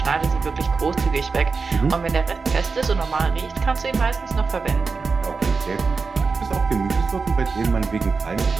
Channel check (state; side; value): quieter; left; 4.6 dB